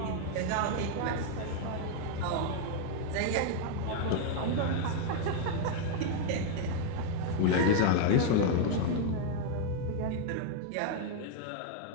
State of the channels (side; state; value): both; different; correlation 0.00